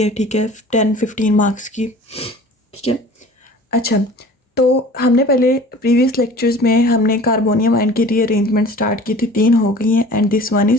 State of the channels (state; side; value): normal; both; correlation 0.44